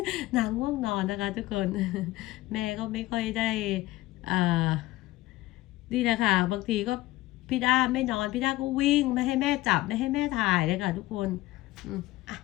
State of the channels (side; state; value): right; quieter; 17.8 dB